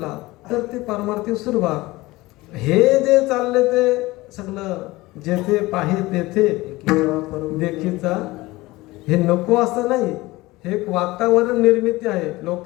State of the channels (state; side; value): quieter; right; 20.1 dB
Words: तर ते परमार्थिक सुरुवात. हे जे चालले ते सगळं जेथे पाहे तेथे देखीचा, हे नको असं नाही. हे एक वातावरण निर्मिती आहे